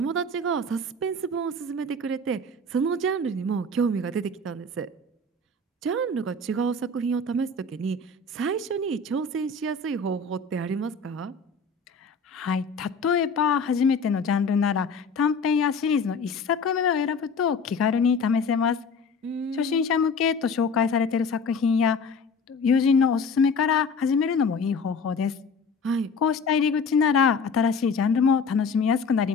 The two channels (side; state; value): right; quieter; 3.7 dB